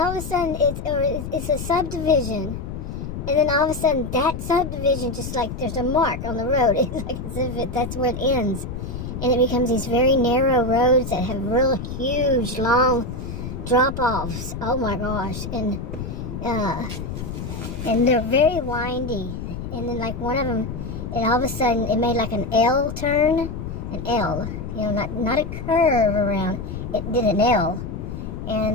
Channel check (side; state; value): left; noise; rumble, 7 dB below the sound